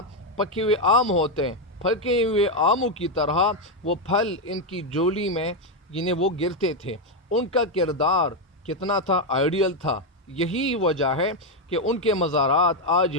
پکے ہوئے آم ہوتے ہیں، پھکے ہوئے آموں کی طرح وہ پھل ان کی جھولی میں وہ گرتے تھے. ان کا کردار کتنا تھا، آئیڈیل تھا. یہی وجہ ہے کہ ان کے مزارات آج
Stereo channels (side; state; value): both; normal; correlation 0.04